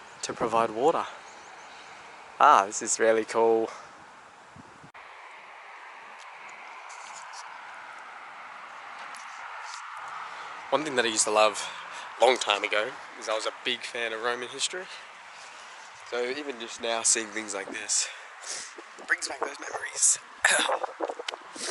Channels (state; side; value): identical; both; correlation 1.00